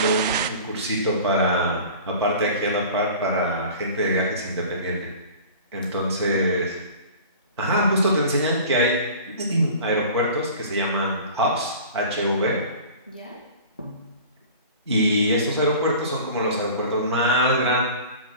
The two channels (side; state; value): both; inverted; correlation -0.41